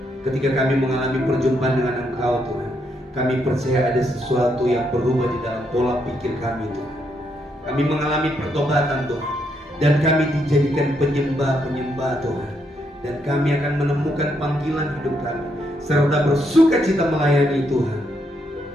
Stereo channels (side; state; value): both; normal; correlation 0.77